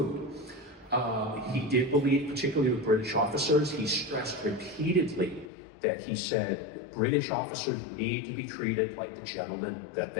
He did believe, particularly with British officers, he stressed repeatedly that he said British officers need to be treated like the gentlemen that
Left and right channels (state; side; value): drops out; right; at 5.5 s